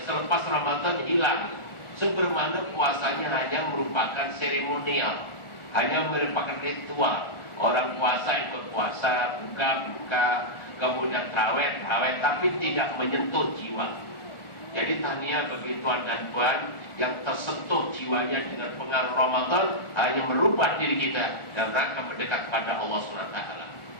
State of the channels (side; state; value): right; late; 1.4 ms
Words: selepas Ramadan hilang, sebermana puasanya hanya merupakan seremonial, hanya merupakan ritual. Orang puasa ikut puasa, buka, kemudian tarawih, tapi tidak menyentuh jiwa. Jadi tahniah bagi tuan dan puan yang tersentuh jiwanya dengan pengaruh Ramadan, hanya merubah diri kita dalam rangka mendekat pada Allah SWT.